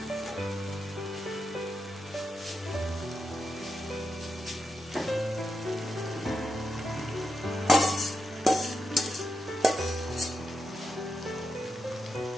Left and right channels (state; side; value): normal; both; correlation 0.87